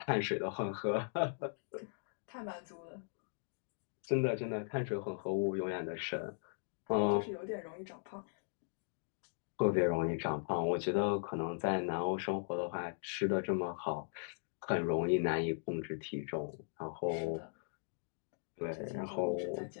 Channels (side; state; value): right; silent; digital silence